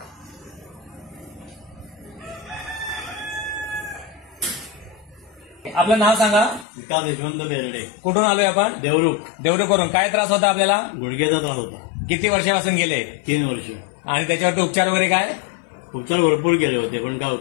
आपलं नाव सांगा. विकास यशवंत बेर्डे. कुठून आलोय आपण? देवरुख. देवरुखवरून. काय त्रास होता आपल्याला? गुडघ्याचा त्रास होता. किती वर्षापासून गेले? 3 वर्ष. आणि त्याच्यावर उपचार वगैरे काय? उपचार भरपूर केले होते पण काय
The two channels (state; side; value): drops out; right; at 6.7 s